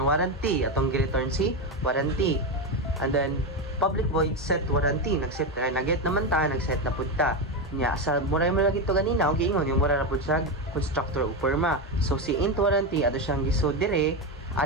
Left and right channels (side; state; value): both; normal; correlation 0.12